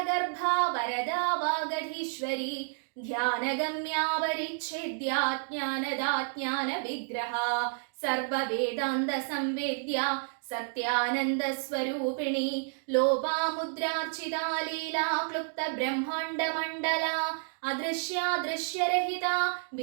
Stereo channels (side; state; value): left; silent; digital silence